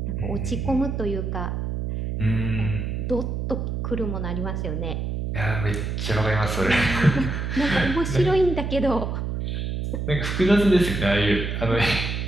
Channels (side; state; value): right; noise; hum, 3 dB below the sound